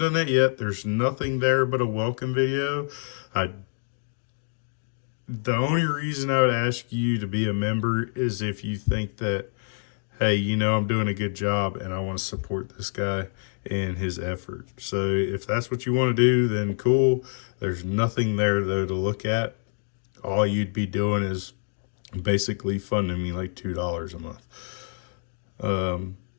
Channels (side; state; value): right; silent; 61 dB below the other